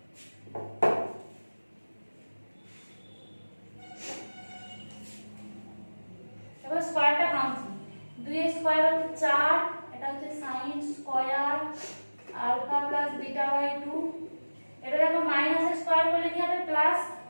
এবার স্কয়ারটা ভাঙছি। 2 এর স্কয়ার হচ্ছে 4, এটা হচ্ছে sin square alpha plus beta by 2। এটা দেখো মাইনাস এর স্কয়ার করলে কি হবে? প্লাস।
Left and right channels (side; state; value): both; inverted; correlation -1.00